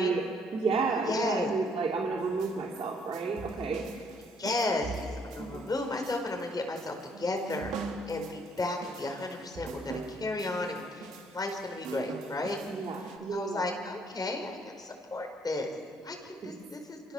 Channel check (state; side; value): normal; both; correlation 0.66